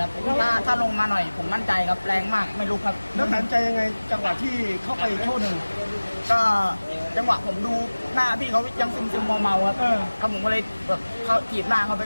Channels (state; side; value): inverted; both; correlation -1.00